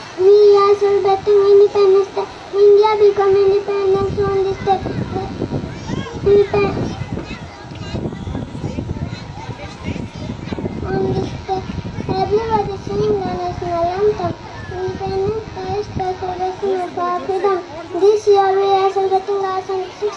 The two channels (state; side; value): identical; both; correlation 1.00